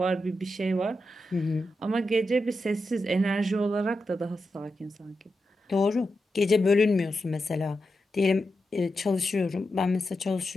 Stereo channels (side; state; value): both; normal; correlation 0.88